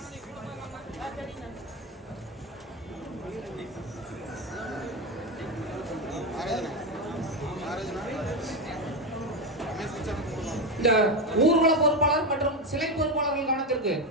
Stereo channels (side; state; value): both; normal; correlation 0.12